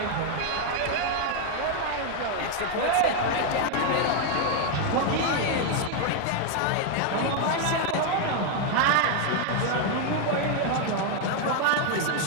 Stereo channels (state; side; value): different; both; correlation 0.01